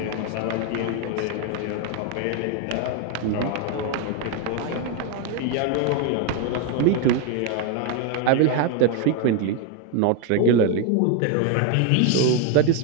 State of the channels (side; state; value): both; different; correlation 0.01